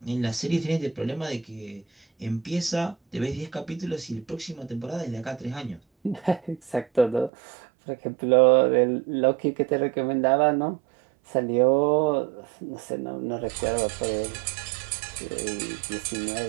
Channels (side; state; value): left; drops out; at 7.3 s